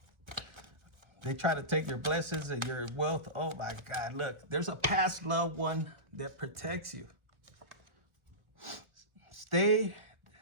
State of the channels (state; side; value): late; left; 1.4 ms